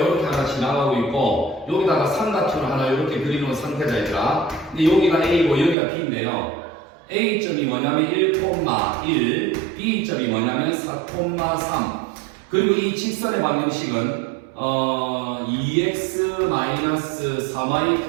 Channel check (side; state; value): left; drops out; at 5.8 s